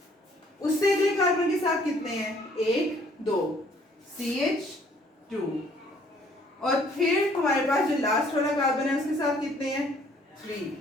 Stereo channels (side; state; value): both; normal; correlation 0.61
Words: उससे अगले कार्बन के साथ कितने हैं, 1 2 CH2, और फिर हमारे पास जो लास्ट वाला कार्बन है उसके साथ कितने हैं, 3